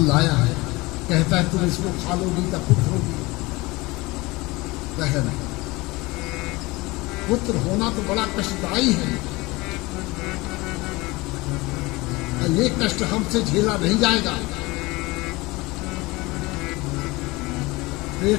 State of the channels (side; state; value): right; quieter; 22.5 dB